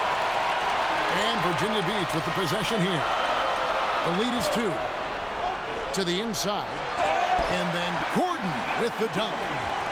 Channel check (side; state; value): both; identical; correlation 1.00